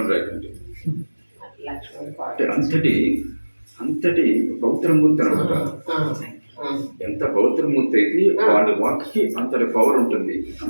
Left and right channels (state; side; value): inverted; both; correlation -1.00